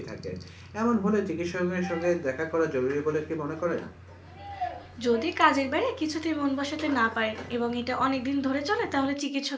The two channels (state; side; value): identical; both; correlation 1.00